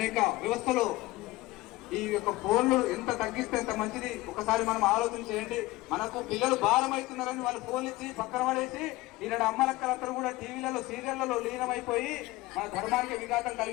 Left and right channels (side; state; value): right; quieter; 19.3 dB